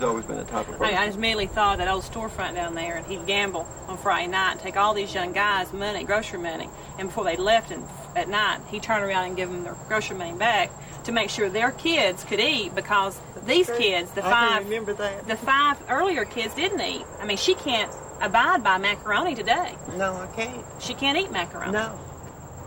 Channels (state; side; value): identical; both; correlation 1.00